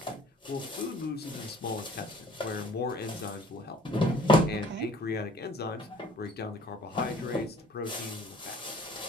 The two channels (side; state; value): both; normal; correlation 0.52